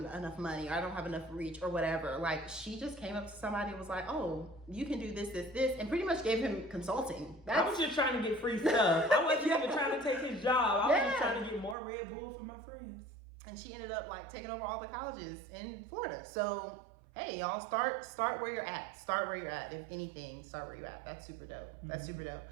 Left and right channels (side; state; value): left; drops out; at 11.8 s